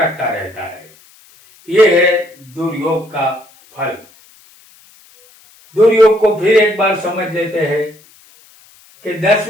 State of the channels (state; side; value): noise; left; hiss, 28 dB below the sound